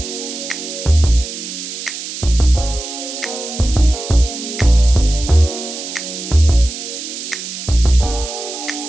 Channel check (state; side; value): noise; right; hiss, 8 dB below the sound